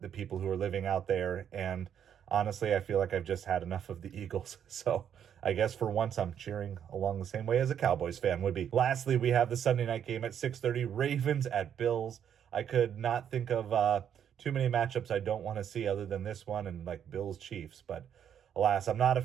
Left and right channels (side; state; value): left; quieter; 8.9 dB